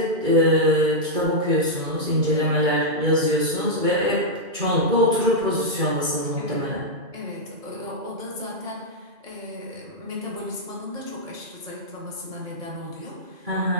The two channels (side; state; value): left; late; 2.4 ms